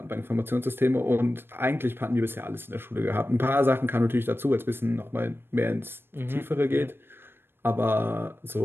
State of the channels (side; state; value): left; late; 0.10 ms